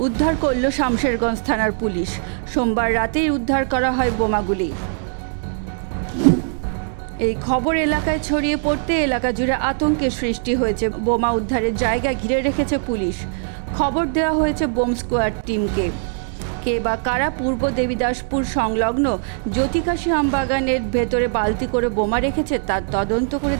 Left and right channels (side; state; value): left; silent; 62 dB below the other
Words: উদ্ধার করল শামশেরগঞ্জ থানার পুলিশ। সোমবার রাতেই উদ্ধার করা হয় বোমাগুলি। এই খবর এলাকায় ছড়িয়ে পড়তে এলাকা জুড়ে আতঙ্কের সৃষ্টি হয়েছে। বোমা উদ্ধারের জায়গা ঘিরে রেখেছে পুলিশ। খবর দেওয়া হয়েছে বোম স্কোয়াড টিমকে। কে বা কারা পূর্ব দেবীদাসপুর সংলগ্ন জ্যোতিকাশী আমবাগানের ভেতরে বালতি করে বোমা রেখেছে তার তদন্ত করে